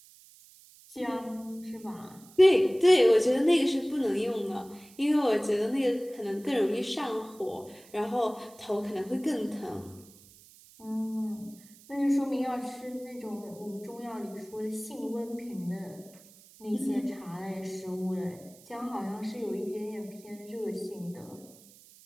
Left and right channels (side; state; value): right; noise; hiss, 24 dB below the sound